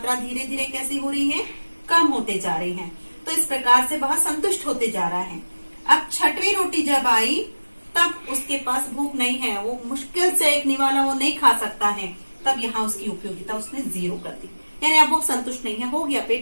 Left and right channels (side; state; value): both; inverted; correlation -1.00